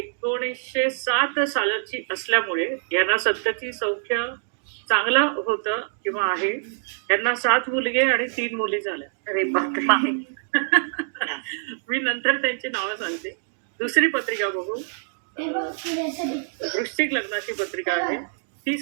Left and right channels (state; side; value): silent; left; digital silence